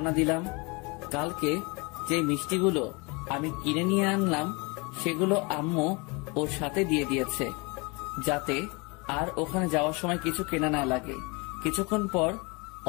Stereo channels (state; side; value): quieter; right; 28.6 dB